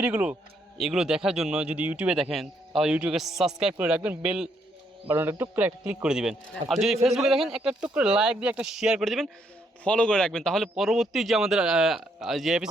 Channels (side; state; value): both; normal; correlation 0.73